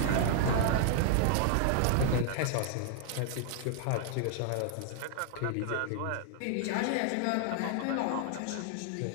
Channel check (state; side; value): different; both; correlation 0.00